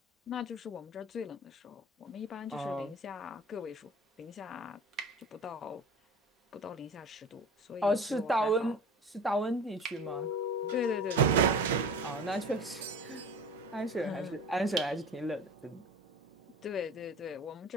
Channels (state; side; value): normal; both; correlation 0.37